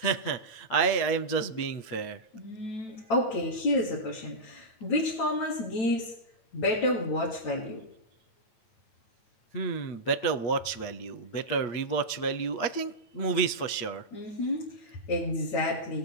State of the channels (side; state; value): right; late; 8.4 ms